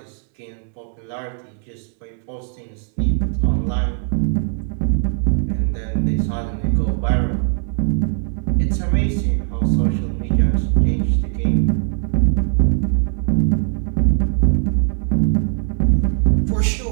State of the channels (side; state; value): left; silent; 66 dB below the other